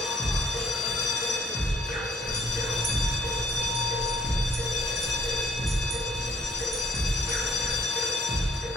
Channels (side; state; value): both; normal; correlation 0.63